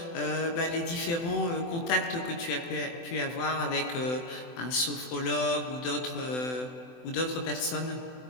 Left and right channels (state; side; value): late; right; 24 ms